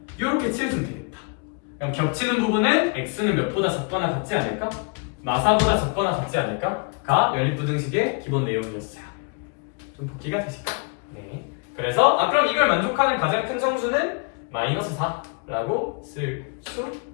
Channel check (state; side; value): quieter; right; 35.5 dB